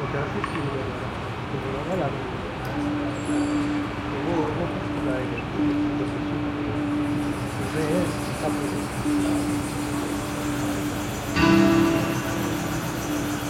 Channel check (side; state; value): both; identical; correlation 1.00